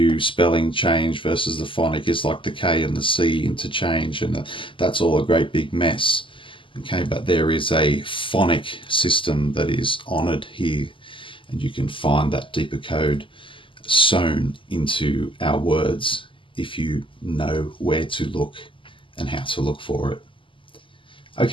spelling change versus the phonic is like the K and the C interchange, and that's all a great big mess. Okay, but there is a phonic system that is honored here, and you can find that deeper code sewn into our words if you know where to look and how to look for it.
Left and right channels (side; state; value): right; late; 0.25 ms